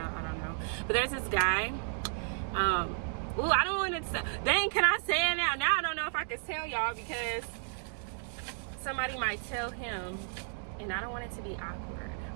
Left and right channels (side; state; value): left; silent; digital silence